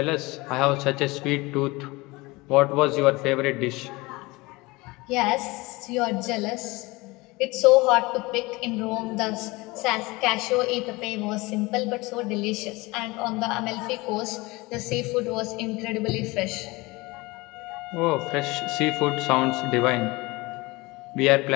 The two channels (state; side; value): quieter; right; 22.9 dB